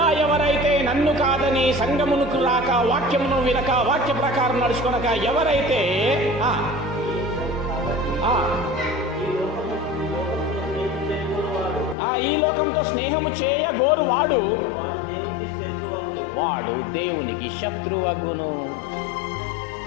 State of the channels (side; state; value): right; drops out; at 12.0 s